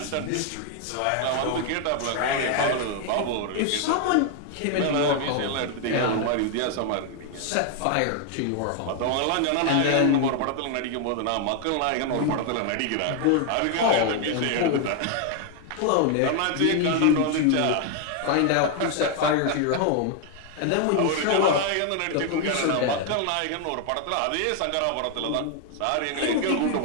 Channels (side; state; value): both; different; correlation 0.00